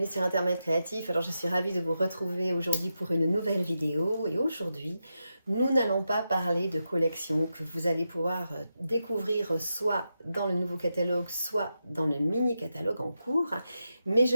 sur Internet Créatif. Alors je suis ravie de vous retrouver aujourd'hui pour une nouvelle vidéo et aujourd'hui nous n'allons pas parler de collections que vous allez pouvoir découvrir soit dans le nouveau catalogue, soit dans le mini catalogue en cours, mais je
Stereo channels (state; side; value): inverted; both; correlation -0.87